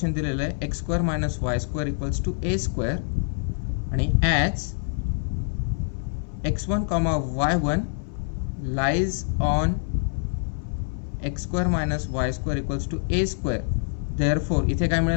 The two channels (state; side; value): silent; right; 61 dB below the other